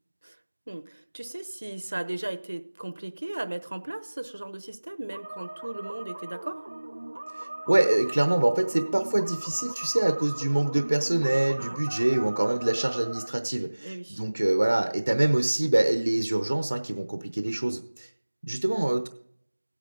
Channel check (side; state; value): both; inverted; correlation -1.00